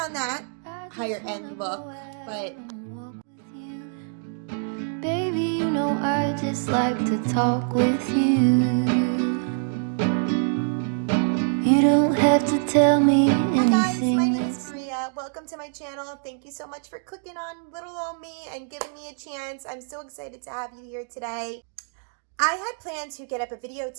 that higher end look, but baby, you know I just like to talk with you. You don't have to tell me anything. Hi guys, my name is Maria. Welcome to my channel. Thank you so much for clicking on little old me and giving me a chance. I'm so excited to have you here today. I had planned to get up a video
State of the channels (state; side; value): silent; left; 61 dB below the other